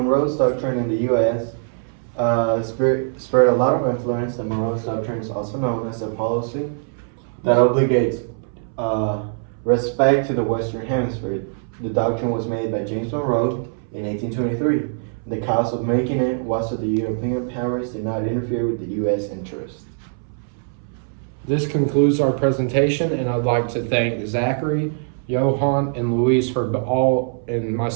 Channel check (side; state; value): left; silent; 64 dB below the other